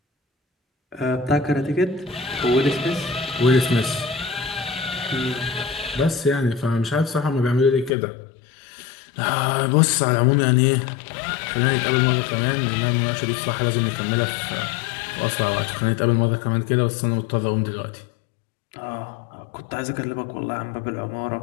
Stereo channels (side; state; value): right; drops out; at 7.9 s